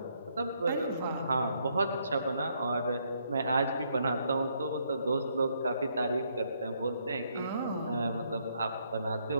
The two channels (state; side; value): inverted; both; correlation -0.73